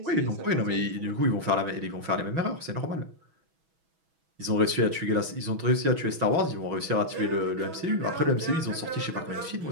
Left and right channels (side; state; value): left; late; 6.2 ms